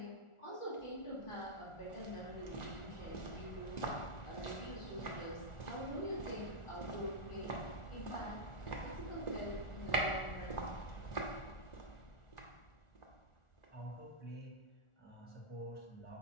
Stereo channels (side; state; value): right; late; 1.4 ms